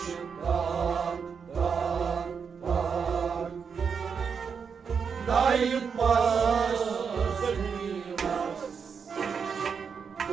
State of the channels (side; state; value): left; quieter; 6.2 dB